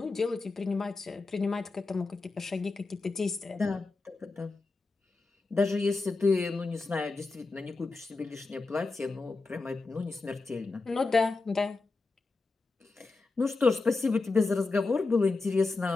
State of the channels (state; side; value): quieter; right; 3.7 dB